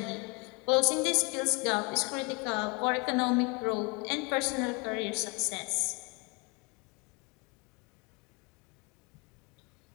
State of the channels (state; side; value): quieter; right; 29.8 dB